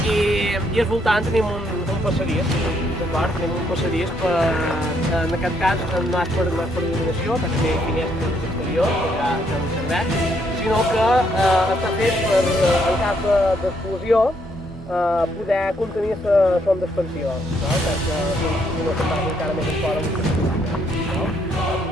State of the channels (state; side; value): normal; both; correlation 0.72